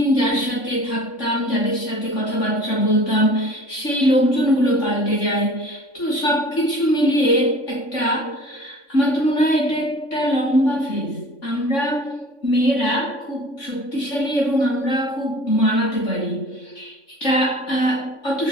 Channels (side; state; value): right; late; 3.6 ms